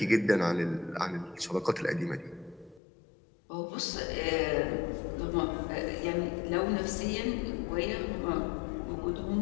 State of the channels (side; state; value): right; drops out; at 2.8 s